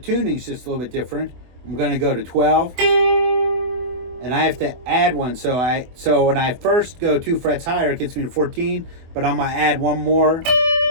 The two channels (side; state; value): left; late; 24 ms